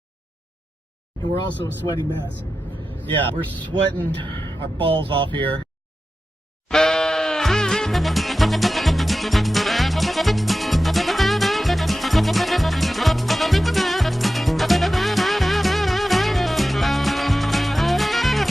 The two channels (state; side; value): normal; both; correlation 0.93